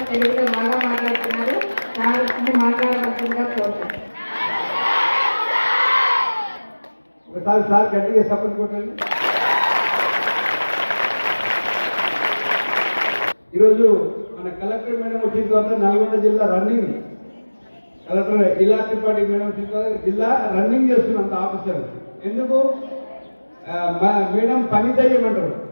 తెలుగులో బాగా మాట్లాడుతున్నారు. సార్ మాట్లాడవలసిందిగా కోరుతున్నాను. ఒకసారి సార్ గట్టిగా సపోర్ట్ కొట్టండి. ఈరోజు మన కలెక్టర్ మేడం వచ్చిన తర్వాత నల్గొండ జిల్లా రన్నింగ్, కలెక్టర్ ఇలా త్రిపాఠి మేడం వచ్చిన తర్వాత జిల్లా రన్నింగ్ చేస్తున్నంత ఆఫీసర్. ఎందుకు మేడం పని చేయమంటారు.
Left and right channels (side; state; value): both; inverted; correlation -1.00